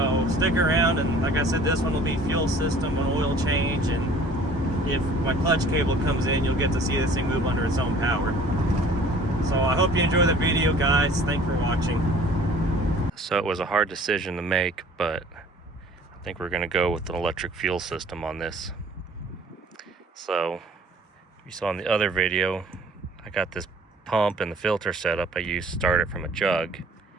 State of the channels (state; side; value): normal; both; correlation 0.51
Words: stick around, and like I said, this one will be fuel system, an oil change, and if my clutch cable comes in, you'll get to see this thing move under its own power. So I hope you enjoy the video, guys. Thanks for watching. So it was a hard decision to make, but I think we're gonna go with an electric fuel system on this. So you saw in the other video, I got this pump and the filter setup I used started from a jug.